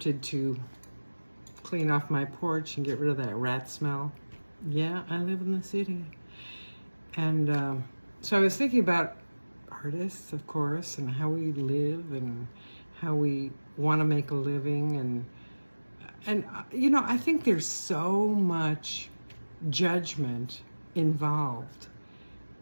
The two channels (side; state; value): both; inverted; correlation -1.00